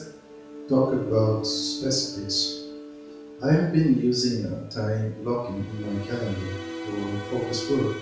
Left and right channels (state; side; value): identical; both; correlation 1.00